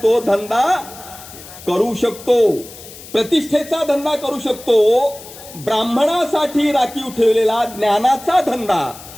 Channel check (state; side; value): noise; left; hiss, 17 dB below the sound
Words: धंदा करू शकतो, प्रतिष्ठेचा धंदा करू शकतो. ब्राह्मणासाठी राखीव ठेवलेला ज्ञानाचा धंदा